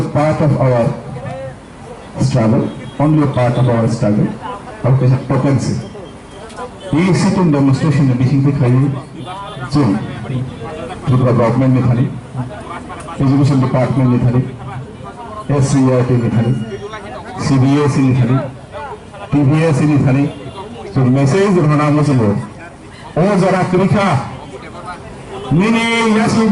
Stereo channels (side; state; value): both; identical; correlation 1.00